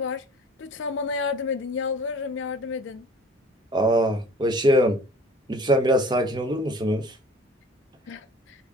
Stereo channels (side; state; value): both; normal; correlation 0.47